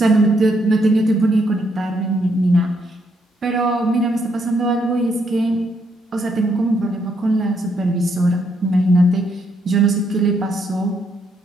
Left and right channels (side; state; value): both; normal; correlation 0.75